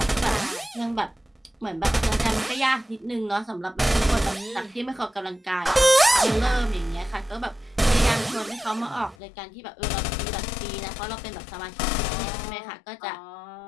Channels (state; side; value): drops out; right; at 9.2 s